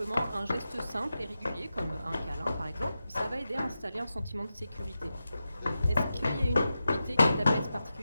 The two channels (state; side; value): inverted; both; correlation -0.91